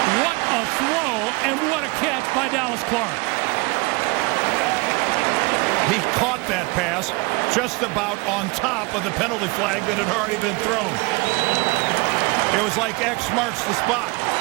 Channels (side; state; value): left; quieter; 26.4 dB